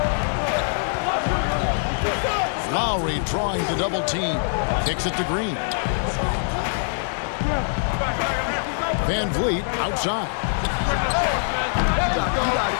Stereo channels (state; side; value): silent; right; 63 dB below the other